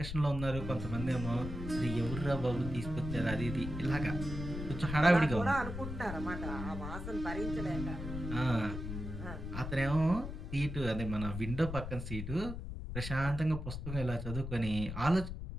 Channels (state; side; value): noise; left; rumble, 6 dB below the sound